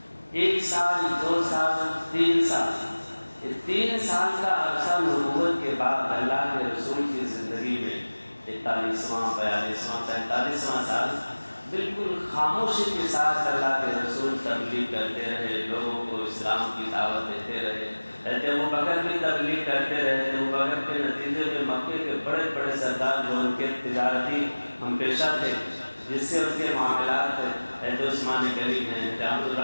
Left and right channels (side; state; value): both; inverted; correlation -1.00